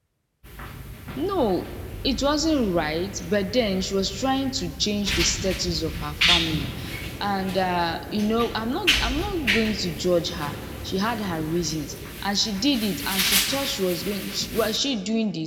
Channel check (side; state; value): both; identical; correlation 1.00